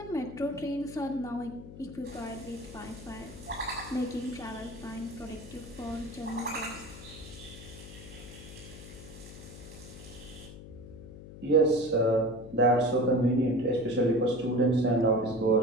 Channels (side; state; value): left; noise; hum, 15 dB below the sound